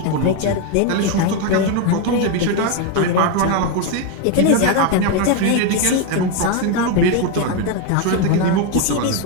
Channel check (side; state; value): both; different; correlation 0.02